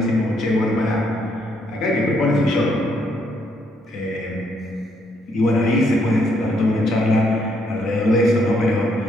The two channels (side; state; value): both; normal; correlation 0.73